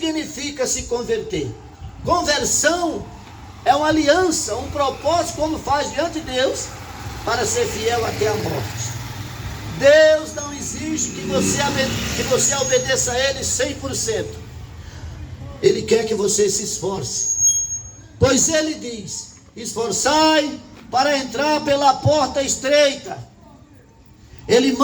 se converter? Conversão é uma aliança, um propósito, como faz diante de Deus, para ser fiel até a morte. Deus não exige que você obedeça a Ele 100%. Ele quer que você se esforce. Pois Ele diz: esforçai para entrar pela porta estreita. Ele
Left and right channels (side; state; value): both; identical; correlation 1.00